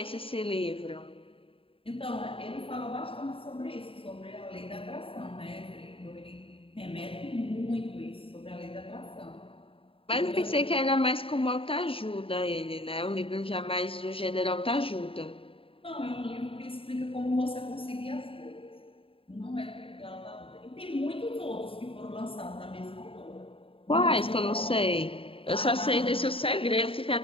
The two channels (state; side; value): late; right; 0.27 ms